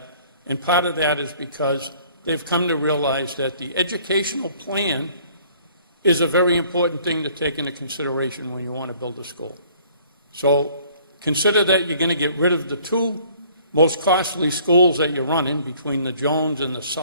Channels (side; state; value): both; inverted; correlation -0.57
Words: And part of that is because they've come to realize that the educational plan is a very important thing to take into consideration when you want to build a school. So consider that you're going to get rid of the two most costly schools that you're running between the Jones and the